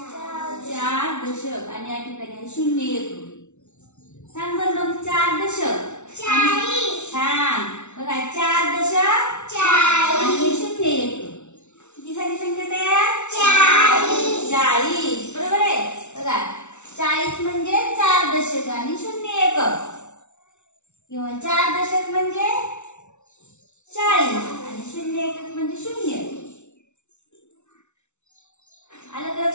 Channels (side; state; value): right; late; 0.82 ms